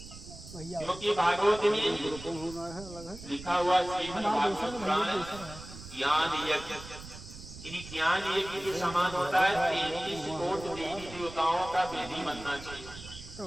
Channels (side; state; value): right; noise; rumble, 14 dB below the sound